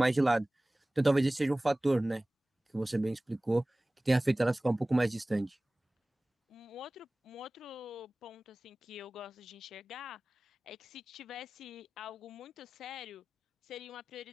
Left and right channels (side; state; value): both; normal; correlation 0.98